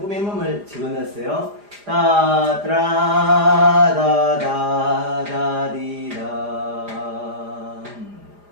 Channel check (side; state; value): left; late; 4.9 ms